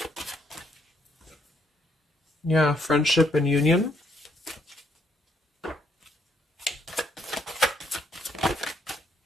Yeah, friendship and union.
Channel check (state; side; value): normal; both; correlation 0.71